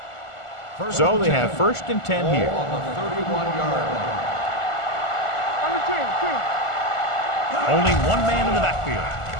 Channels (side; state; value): right; late; 1.4 ms